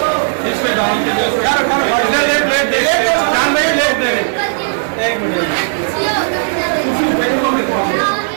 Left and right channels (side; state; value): left; silent; digital silence